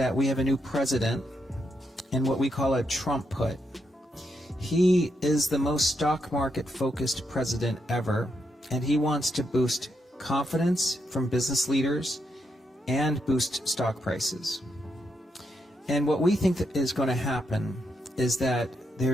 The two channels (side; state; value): both; normal; correlation 0.80